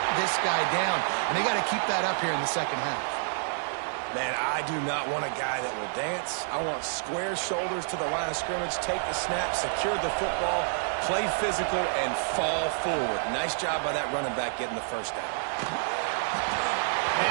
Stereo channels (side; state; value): left; silent; digital silence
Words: this guy down. And they got to keep that up here in the second half. Man, I do not want a guy that will dance. I want square shoulders to the line of scrimmage, take the snap, secure the football, play physical, and fall forward. Nice job by that running back getting the first down. And